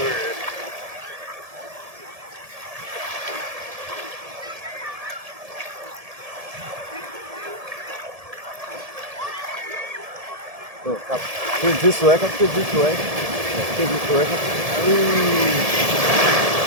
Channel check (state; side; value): late; left; 1.7 ms